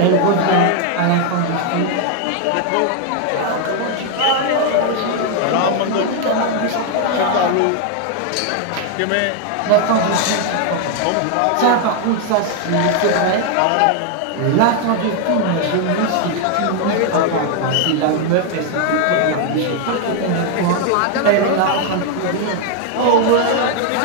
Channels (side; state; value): both; different; correlation 0.00